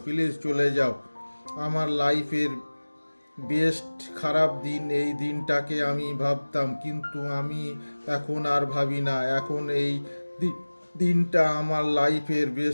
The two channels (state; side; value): inverted; both; correlation -1.00